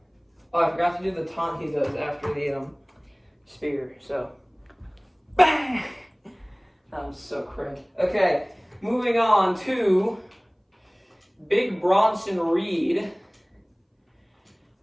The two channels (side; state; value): both; identical; correlation 1.00